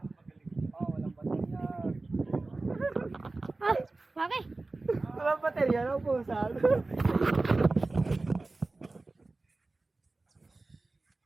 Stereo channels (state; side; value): quieter; left; 3.3 dB